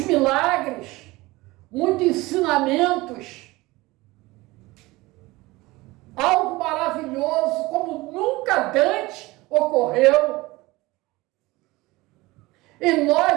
muitos ensinamentos, algo maravilhoso como nunca antes ocorreu. E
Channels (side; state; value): left; quieter; 20.9 dB